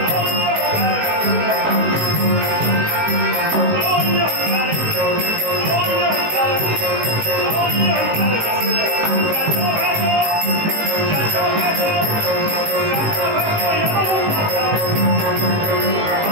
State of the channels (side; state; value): left; late; 18 ms